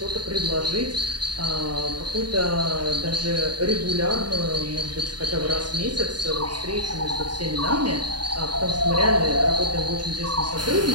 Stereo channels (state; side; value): late; left; 0.71 ms